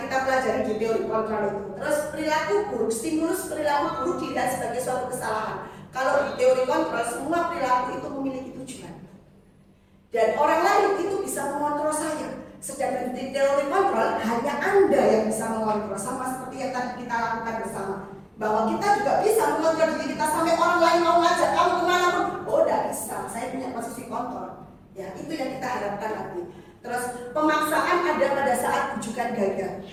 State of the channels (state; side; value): identical; both; correlation 1.00